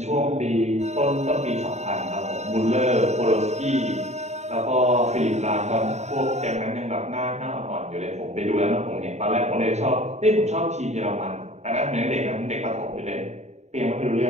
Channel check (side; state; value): left; late; 0.32 ms